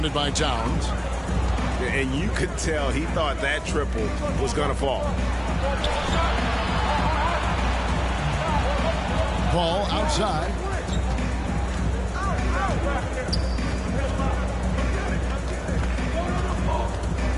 by Towns. And you could tell he thought that triple was going to fall. Ball outside.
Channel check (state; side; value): identical; both; correlation 1.00